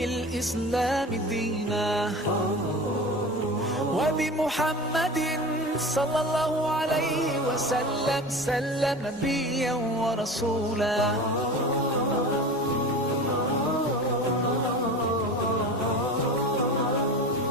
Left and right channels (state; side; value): normal; both; correlation 0.33